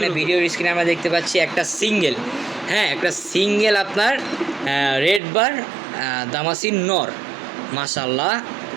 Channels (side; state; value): left; drops out; at 5.2 s